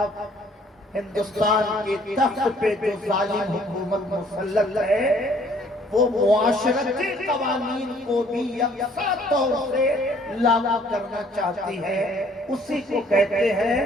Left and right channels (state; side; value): normal; both; correlation 0.60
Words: ہندوستان کے تخت پہ جو ظالم حکومت مسلط ہے وہ معاشرتی قوانین کو بھی یکساں طور سے لاگو کرنا چاہتی ہے. اسی کو کہتے ہیں